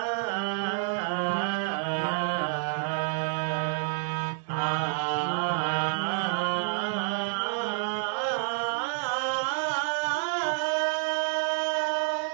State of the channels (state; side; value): silent; left; 55 dB below the other